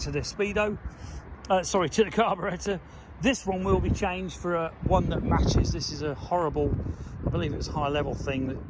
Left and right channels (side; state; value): both; identical; correlation 1.00